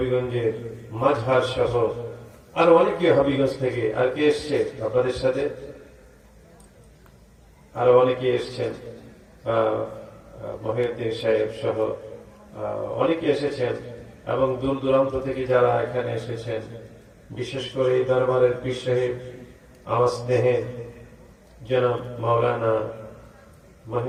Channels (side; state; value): both; identical; correlation 1.00